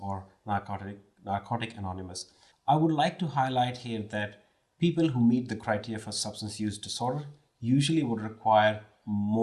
Narcotic Anonymous. I would like to highlight here that people who meet the criteria for substance use disorder usually would require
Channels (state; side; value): identical; both; correlation 1.00